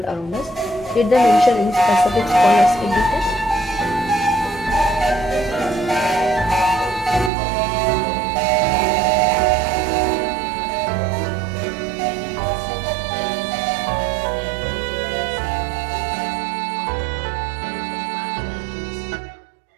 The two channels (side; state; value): left; drops out; at 7.3 s